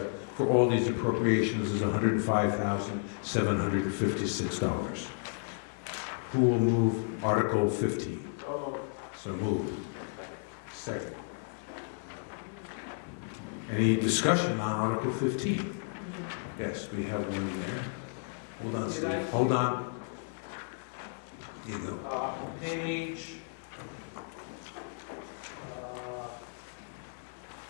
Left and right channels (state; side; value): silent; right; digital silence